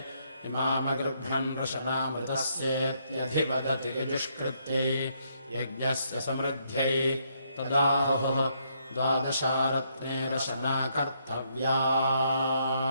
इमामगृभ्रन् रशनामृतस्येत्यधिवदति यजुष्कृत्यै यज्ञस्य समृद्ध्यै तदाहुः 12 रत्ने रशना कर्तव्या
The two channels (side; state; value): both; inverted; correlation -0.73